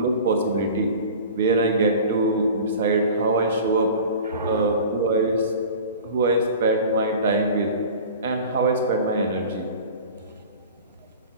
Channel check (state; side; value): inverted; both; correlation -0.39